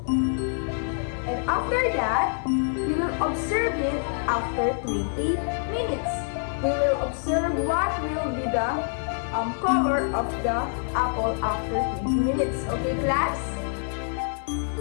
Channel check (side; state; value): right; silent; 61 dB below the other